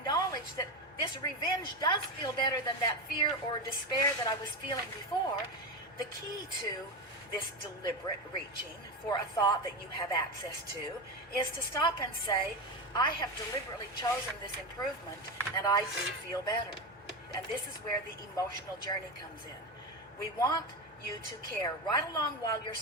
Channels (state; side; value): normal; both; correlation 0.17